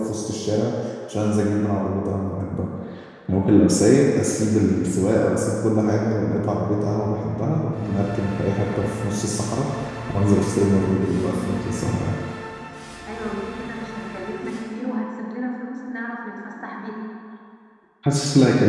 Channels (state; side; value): identical; both; correlation 1.00